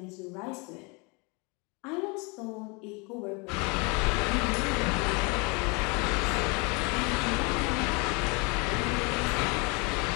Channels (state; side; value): quieter; right; 30.3 dB